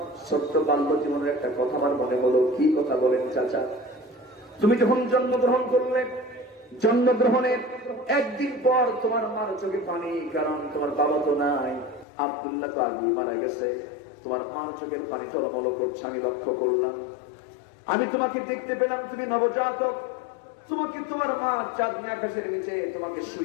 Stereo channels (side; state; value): right; drops out; at 12.1 s